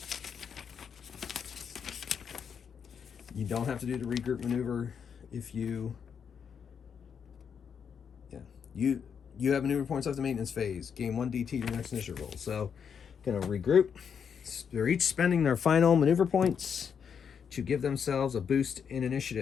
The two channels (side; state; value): right; quieter; 7.1 dB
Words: You don't have to do the regroup maneuver if you... Yeah. You have maneuver points left in maintenance phase. Gain 1 DT your next initiative roll. So, going to regroup. They're each spending their final maneuver points to give themselves a boost in